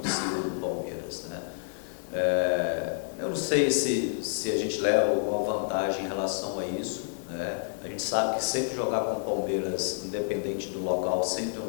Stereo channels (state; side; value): silent; right; digital silence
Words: do Palmeiras, né? Eu não sei se a gente leva alguma vantagem em relação a isso, né? A gente sabe que sempre jogar com o Palmeiras, independente do local, sempre é